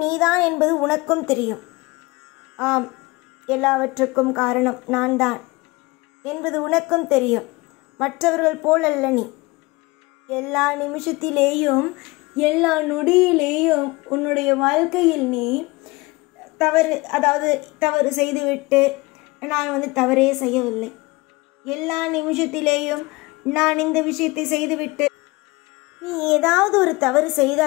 நீதான் என்பது உனக்கும் தெரியும். ஆம், எல்லாவற்றுக்கும் காரணம் நான் தான் என்பது உனக்கும் தெரியும். மற்றவர்கள் போலல்ல நீ. எல்லா நிமிஷத்திலேயும் எல்லா நொடியிலேயும் உன்னுடைய வாழ்க்கையில் நீ தவறு செய்துவிட்டு நான் தவறே செய்யவில்லை. எல்லா நிமிஷத்திலேயும் நான் இந்த விஷயத்தை செய்துவிட்டு நீ ஏதாவது ஒரு தவறு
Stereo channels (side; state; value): right; quieter; 23.3 dB